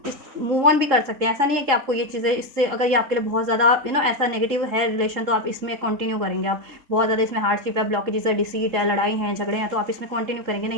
इस मूव ऑन भी कर सकते हैं। ऐसा नहीं है कि आपको ये चीज़ें इससे, अगर ये आपके लिए बहुत ज़्यादा ऐसा नेगेटिव है रिलेशन, तो आप इसमें कंटिन्यू करेंगे। आप बहुत ज़्यादा इसमें हार्डशिप है, ब्लॉकेजेस है, डिसीट है, लड़ाई है, झगड़े हैं, तो आप इसमें कंटिन्यू करेंगे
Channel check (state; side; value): late; left; 3.7 ms